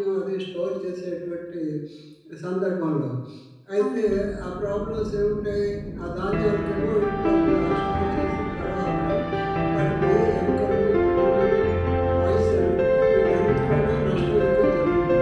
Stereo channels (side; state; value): both; identical; correlation 1.00